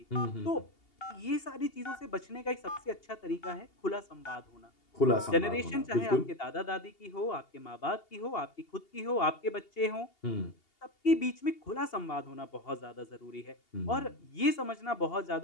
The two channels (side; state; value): right; late; 2.8 ms